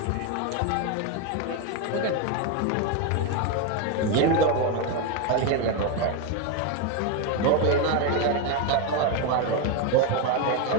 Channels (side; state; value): both; different; correlation 0.02